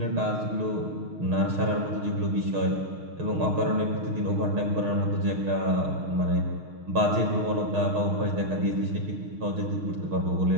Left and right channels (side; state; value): left; late; 6.4 ms